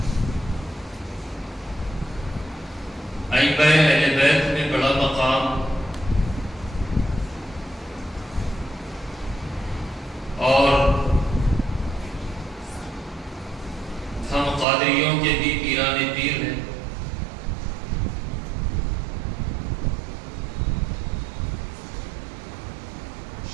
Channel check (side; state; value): left; drops out; at 14.7 s